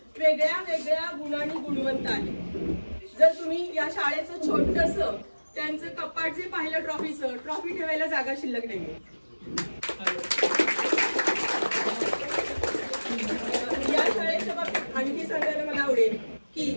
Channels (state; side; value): inverted; both; correlation -1.00